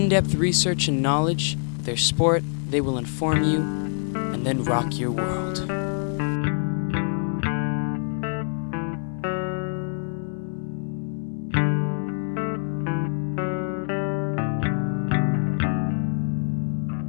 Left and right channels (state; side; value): silent; right; 62 dB below the other